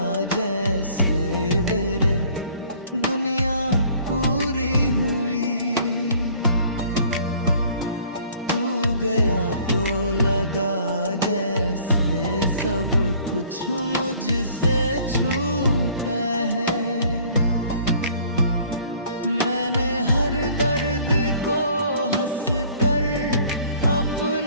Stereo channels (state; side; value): inverted; both; correlation -0.55